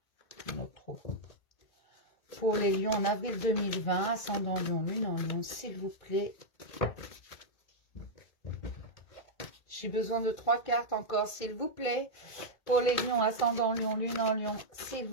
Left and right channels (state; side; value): late; right; 2.1 ms